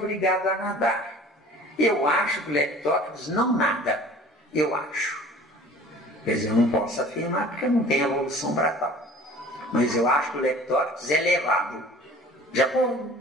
a nadar. Eu acho que o Leptóptero não nada, eu acho. Quer dizer, eu não posso afirmar porque não tem evolução para tal. Mas eu acho que o Leptóptero é levado. Já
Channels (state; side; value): normal; both; correlation 0.45